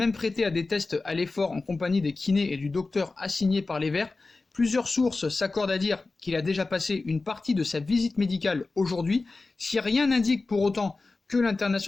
prêté à des tests à l'effort en compagnie des kinés et du docteur assigné par les Verts. Plusieurs sources s'accordent à dire qu'il a déjà passé une partie de sa visite médicale aujourd'hui. Si rien n'indique pour autant que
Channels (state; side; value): quieter; right; 3.6 dB